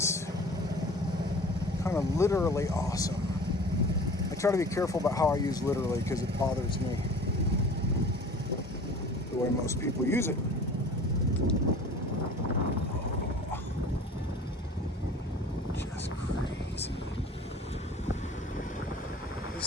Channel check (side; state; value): both; normal; correlation 0.43